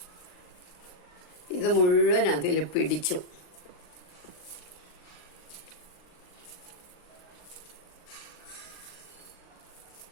ഇത് മുഴുവൻ അതിൽ പിടിച്ചു.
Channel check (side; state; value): right; late; 39 ms